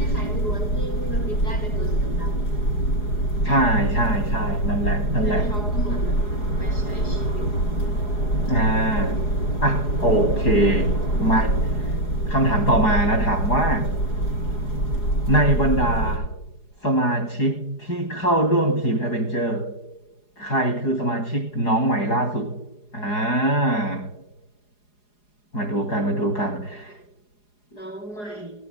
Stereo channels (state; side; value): late; right; 4.8 ms